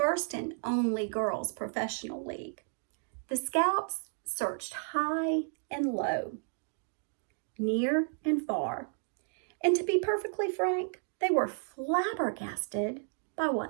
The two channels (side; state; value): left; silent; 56 dB below the other